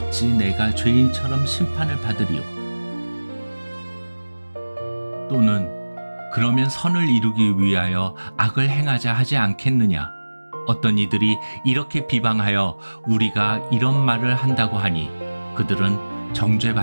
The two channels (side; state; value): both; inverted; correlation -1.00